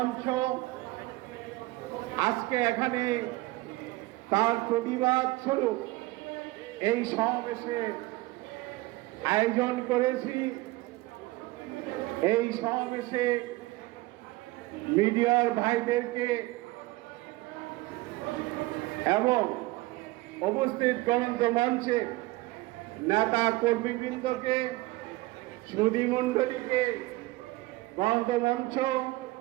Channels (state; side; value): quieter; left; 20.4 dB